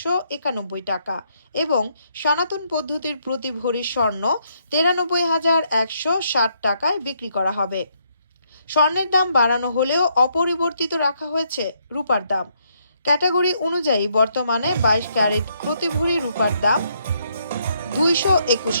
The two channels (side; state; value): both; inverted; correlation -0.73